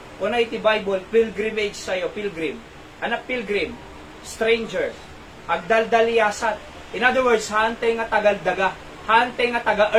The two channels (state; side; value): identical; both; correlation 1.00